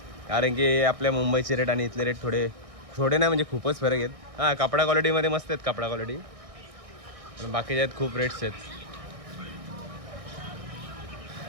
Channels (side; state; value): left; late; 1.6 ms